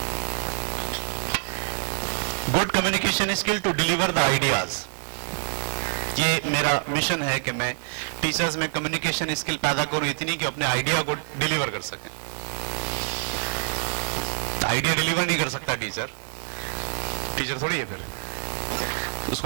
Good communication skill to deliver the ideas. یہ میرا مشن ہے کہ میں ٹیچرز میں کمیونیکیشن اسکل پیدا کروں اتنی کہ اپنے آئیڈیا کو ڈیلیور کر سکیں. آئیڈیا ڈیلیور نہیں کر سکتا ٹیچر تھوڑی ہے, پھر اس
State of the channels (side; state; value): left; silent; digital silence